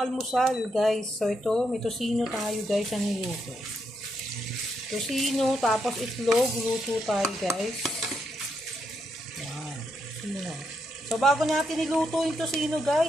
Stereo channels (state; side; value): normal; both; correlation 0.80